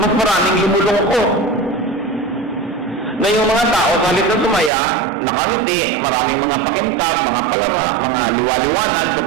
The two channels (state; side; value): drops out; left; at 4.7 s